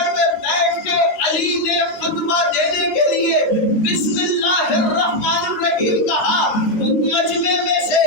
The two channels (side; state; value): right; late; 13 ms